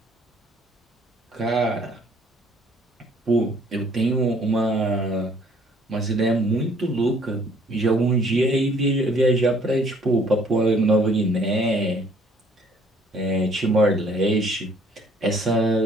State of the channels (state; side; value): normal; both; correlation 0.60